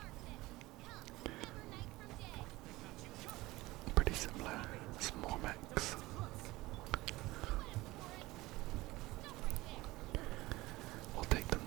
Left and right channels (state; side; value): quieter; left; 19.6 dB